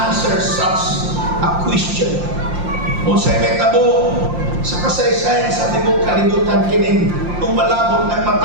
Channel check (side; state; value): left; late; 5.7 ms